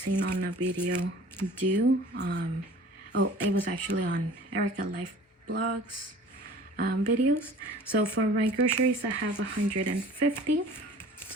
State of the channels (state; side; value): normal; both; correlation 0.46